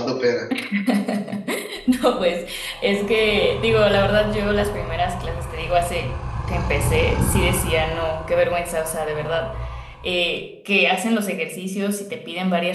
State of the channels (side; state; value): both; identical; correlation 1.00